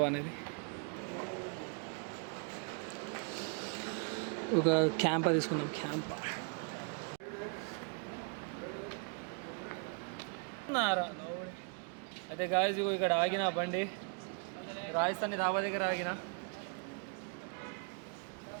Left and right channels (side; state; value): left; quieter; 38.7 dB